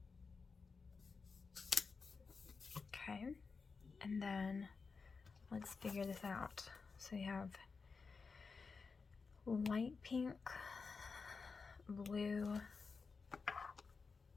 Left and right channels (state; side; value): quieter; right; 4.8 dB